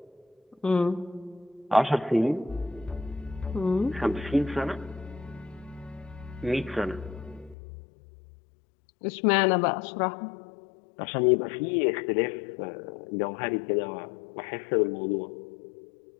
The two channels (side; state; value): right; drops out; at 7.6 s